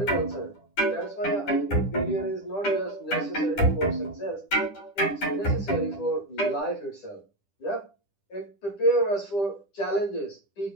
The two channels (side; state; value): right; late; 10 ms